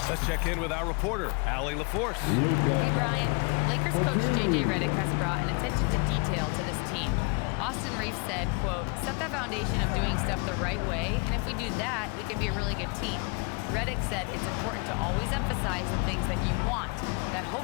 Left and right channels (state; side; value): quieter; right; 31.9 dB